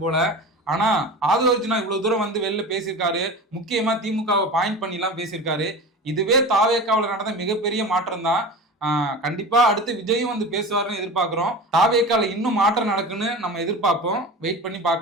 போல. ஆனா ஆதவர்ஜுனா இவ்வளவு தூரம் வந்து வெளில பேசியிருக்காரு. முக்கியமா திமுகவை பாயிண்ட் பண்ணி எல்லாம் பேசியிருக்காரு. இதுவே தாவேக்காவில் நடந்த மிகப்பெரிய மாற்றம் தான். கண்டிப்பா அடுத்து விஜயும் வந்து பேசுவாருன்னு எதிர்பார்க்கிறோம். தாவேக்கால இன்னும் மாற்றம் நடக்குன்னு நம்ம எதிர்பார்ப்போம். வெயிட் பண்ணி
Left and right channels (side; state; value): both; normal; correlation 0.31